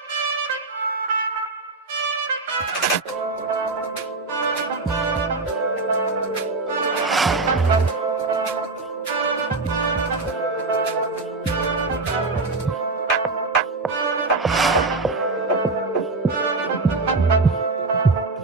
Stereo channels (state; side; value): quieter; left; 3.6 dB